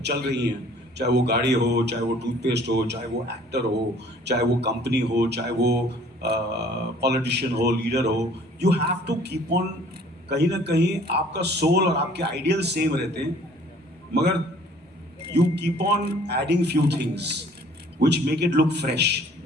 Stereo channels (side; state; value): both; normal; correlation 0.55